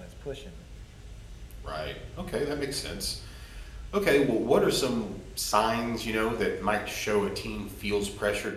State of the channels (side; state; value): both; identical; correlation 1.00